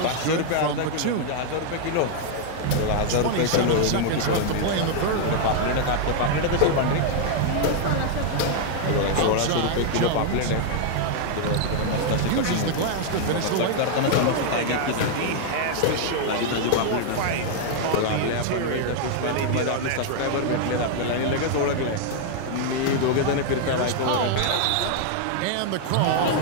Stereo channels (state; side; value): different; both; correlation 0.00